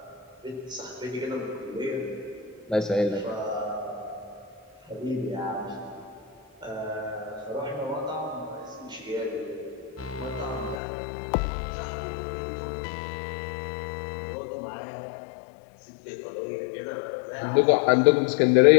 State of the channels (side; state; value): right; drops out; at 10.8 s